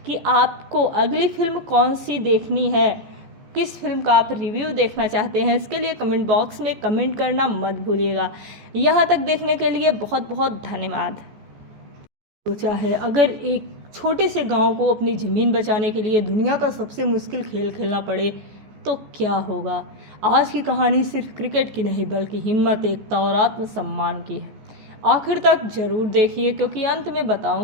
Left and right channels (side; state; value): left; late; 14 ms